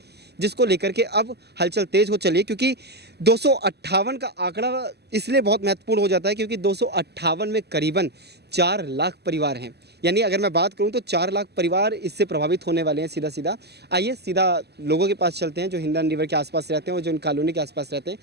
जिसको लेकर के अब हलचल तेज़ हो चली है। क्योंकि 258 का आंकड़ा इसलिए बहुत महत्वपूर्ण हो जाता है क्योंकि 258 में करीबन 4 लाख परिवार हैं। यानी अगर मैं बात करूं तो 4 लाख परिवार इससे प्रभावित होने वाले हैं सीधा। आइए सीधा लोगों के पास चलते हैं जो हिंदा रिवर के आसपास रहते हैं और जो इन कॉलोनी के आसपास रहते हैं,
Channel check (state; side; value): late; left; 0.48 ms